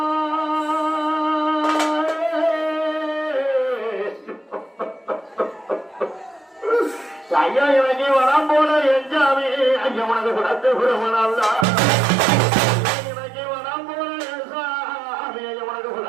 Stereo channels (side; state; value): left; drops out; at 11.7 s